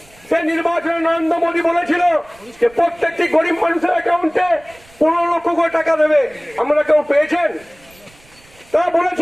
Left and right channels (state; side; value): noise; right; rumble, 28 dB below the sound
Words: সেই নির্বাচনে নরেন্দ্র মোদী বলেছিল যে প্রত্যেকটি গরিব মানুষের অ্যাকাউন্টে 15 লক্ষ করে টাকা দেবে। আপনারা কেউ পেয়েছেন? তারা